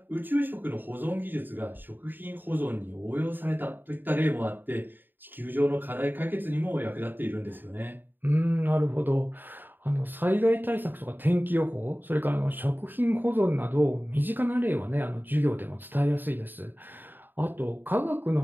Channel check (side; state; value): left; late; 0.092 ms